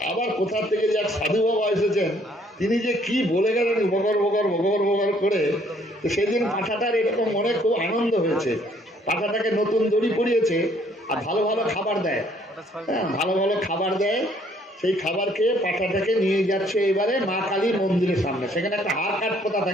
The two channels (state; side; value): normal; both; correlation 0.63